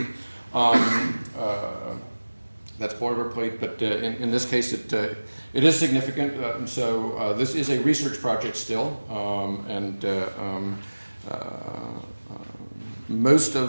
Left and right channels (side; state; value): both; inverted; correlation -1.00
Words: That's boilerplate, but in this case, it is significant. And so this is a research project still, most